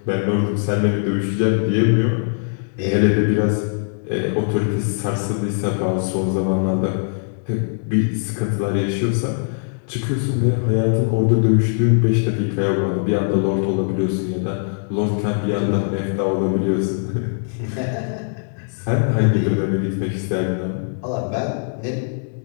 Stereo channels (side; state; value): right; silent; digital silence